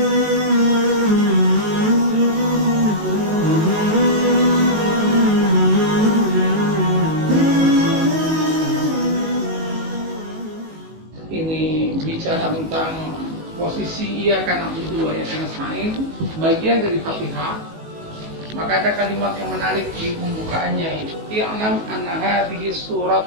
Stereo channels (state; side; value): late; left; 19 ms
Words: bicara tentang posisi iyyaka na'budu wa iyyaka nasta'in, bagian dari Fatihah. Maka ada kalimat yang menarik di pembukaannya itu. I'lam anna hadhihi